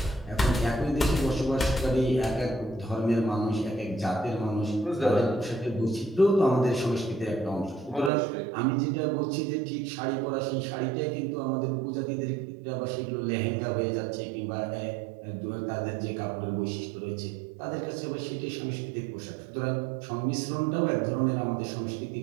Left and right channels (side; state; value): left; drops out; at 8.1 s